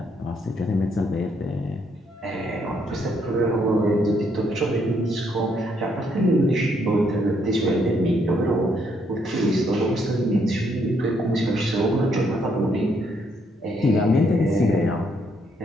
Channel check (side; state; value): both; normal; correlation 0.72